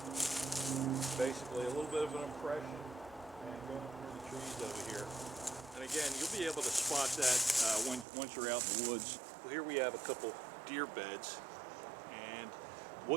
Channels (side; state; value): left; drops out; at 8.1 s